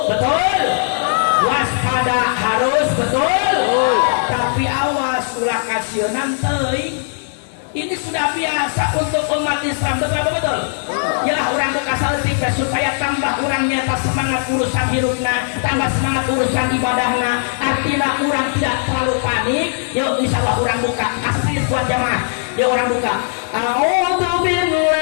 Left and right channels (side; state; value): right; silent; 64 dB below the other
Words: betul? Waspada harus betul. Tapi awas ulah kasionan teuing. Ini sudah biasa untuk umat Islam, betul betul. Ya orang bekasal tipe supaya tambah orang nyata semangat urusan hidupnya, tambah semangat urusan ibadahnya. Artinya orang tidak terlalu panik. Yuk insyaallah orang buka asli buat jamaah. Yuk orang buka. A'udzu